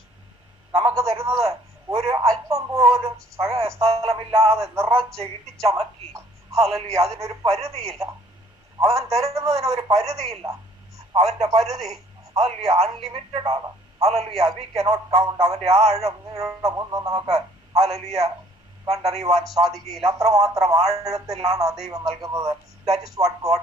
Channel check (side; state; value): both; normal; correlation 0.59